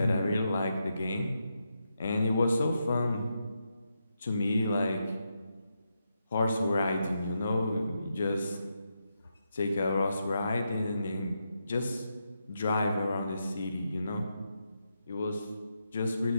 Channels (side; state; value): both; inverted; correlation -0.84